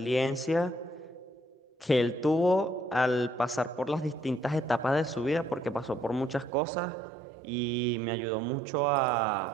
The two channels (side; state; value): left; drops out; at 6.5 s